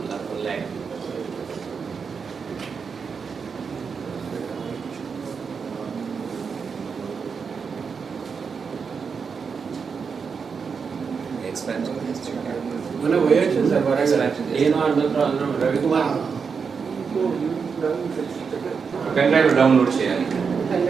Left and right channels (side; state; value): left; quieter; 5.8 dB